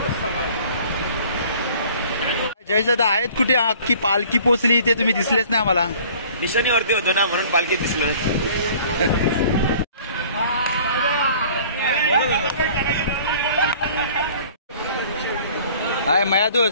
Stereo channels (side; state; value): both; inverted; correlation -0.50